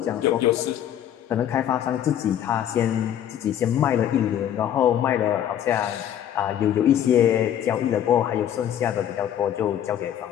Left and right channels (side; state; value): right; quieter; 10.4 dB